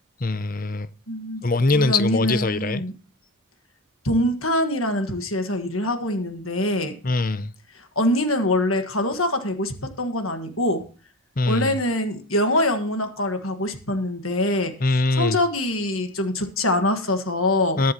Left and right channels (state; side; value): normal; both; correlation 0.24